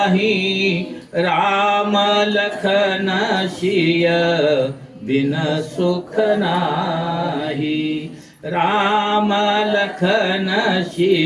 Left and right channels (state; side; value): identical; both; correlation 1.00